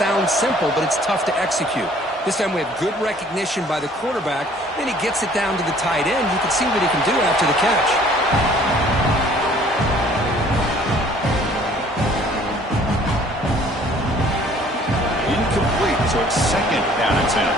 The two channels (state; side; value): normal; both; correlation 0.56